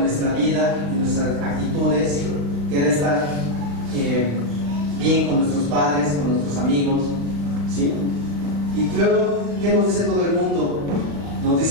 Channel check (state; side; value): late; left; 36 ms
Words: nuestra vida, en nuestras actitudes, querer estar bien con nuestros padres, con nuestros amigos, ¿sí? Y luego, ¿qué nos dice todo el mundo? Nos